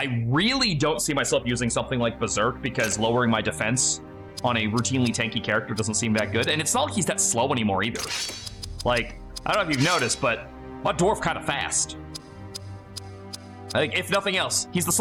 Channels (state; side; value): identical; both; correlation 1.00